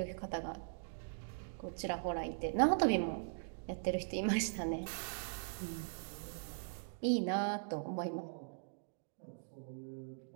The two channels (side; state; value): left; silent; digital silence